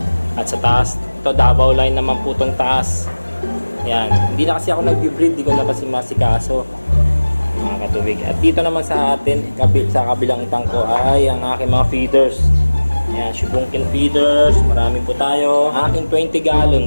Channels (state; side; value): inverted; both; correlation -1.00